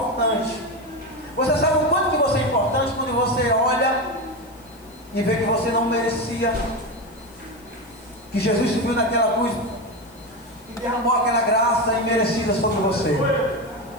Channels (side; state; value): left; noise; hiss, 27 dB below the sound